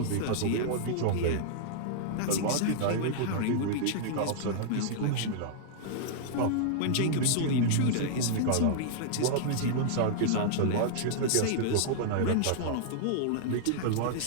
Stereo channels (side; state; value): both; different; correlation -0.01